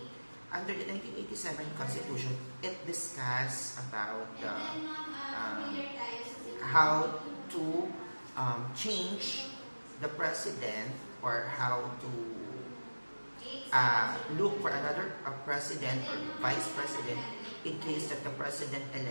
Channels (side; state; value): both; inverted; correlation -1.00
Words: under the 1987 constitution, it discusses about how to change the president or how to look for another president or vice president in case that the